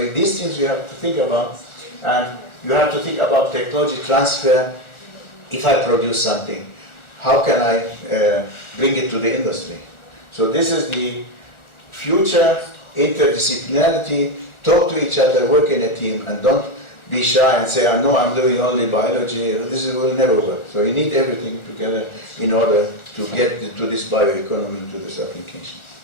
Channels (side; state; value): right; late; 1.4 ms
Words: these things you have to think about, and you have to think about technology transfer. If I produce something, how can I bring it to the industry? So this is the future, interdisciplinarity, talk to each other, work in a team, and don't be shy and say, no, I'm doing only biology. This will never work. So you need everything together in order to get to this bioeconomy, to this application.